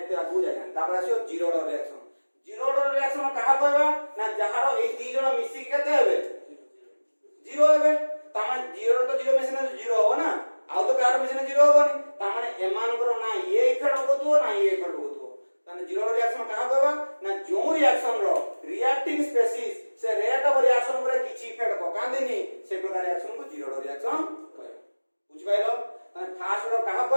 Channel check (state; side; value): inverted; both; correlation -1.00